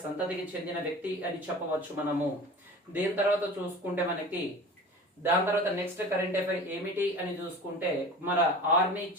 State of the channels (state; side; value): normal; both; correlation 0.37